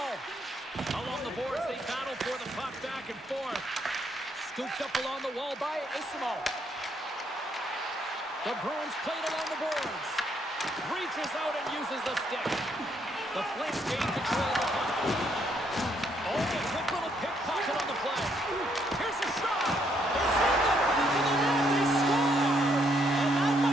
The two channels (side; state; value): both; normal; correlation 0.72